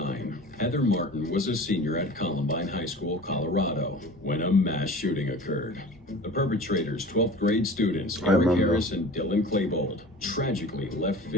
Heather Martin was a senior at Columbine High School, Colorado, when a mass shooting occurred. The perpetrators, 12th grade students Eric Harris and Dylan Klebold, tragically left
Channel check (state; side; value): normal; both; correlation 0.39